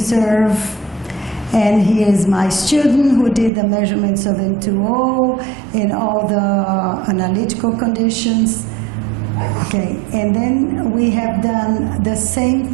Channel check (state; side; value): drops out; left; at 3.5 s